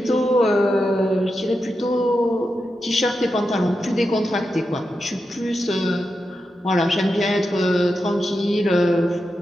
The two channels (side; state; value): both; normal; correlation 0.88